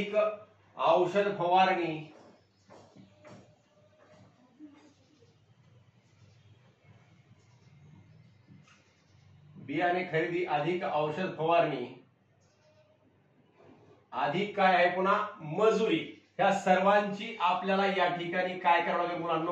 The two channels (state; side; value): identical; both; correlation 1.00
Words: औषध फवारणी, बियाणे खरेदी अधिक औषध फवारणी अधिक काय आहे पुन्हा मजुरी, ह्या सर्वांची आपल्याला या ठिकाणी काय करावं लागेल